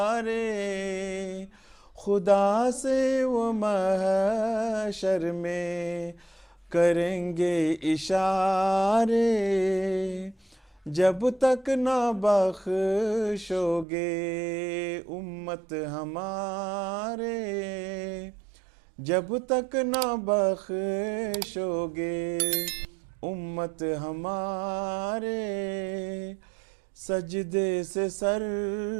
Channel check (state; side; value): drops out; left; at 13.9 s